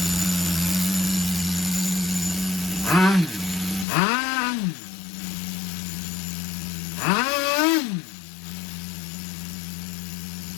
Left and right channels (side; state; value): right; drops out; at 3.9 s